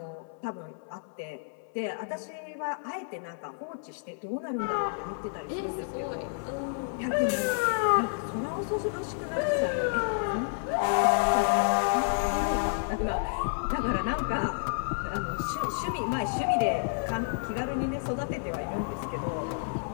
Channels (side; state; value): right; silent; 58 dB below the other